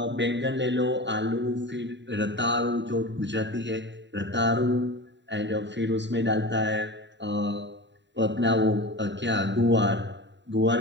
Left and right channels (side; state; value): left; late; 0.52 ms